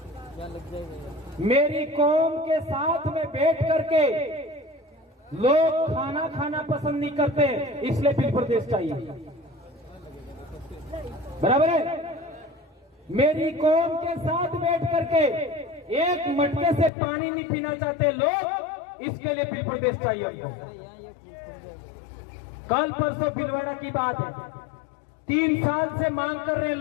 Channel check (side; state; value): right; drops out; at 16.9 s